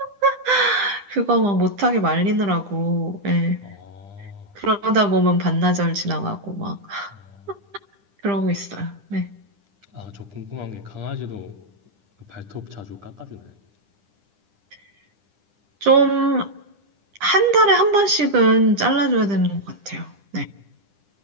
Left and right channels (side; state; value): left; late; 10 ms